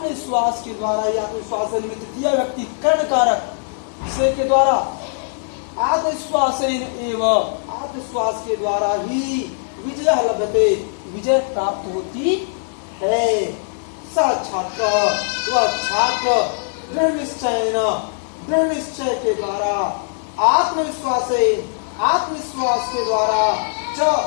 के द्वारा, आत्मविश्वास निमित्त तृतीय व्यक्ति कर्ण कारक से के द्वारा, आत्मविश्वास एवं, आत्मविश्वास के द्वारा ही विजय लभते, विजय प्राप्त होती है। स छात्र, वह छात्र, दृढ़ निश्चय, दृढ़ निश्चय के द्वारा, आत्मविश्वास, आत्मविश्वास के द्वारा, च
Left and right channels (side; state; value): right; silent; 65 dB below the other